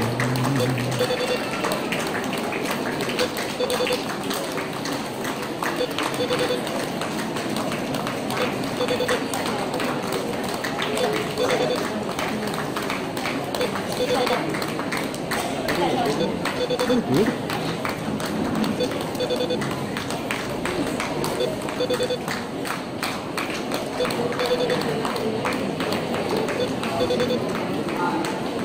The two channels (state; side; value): identical; both; correlation 1.00